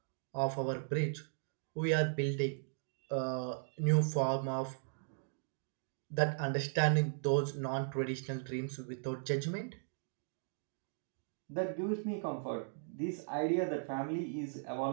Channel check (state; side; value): silent; left; digital silence